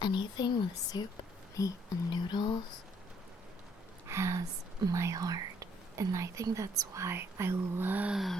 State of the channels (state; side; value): normal; both; correlation 0.66